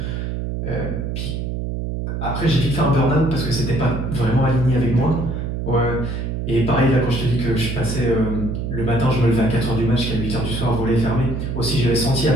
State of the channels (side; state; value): right; noise; hum, 3 dB below the sound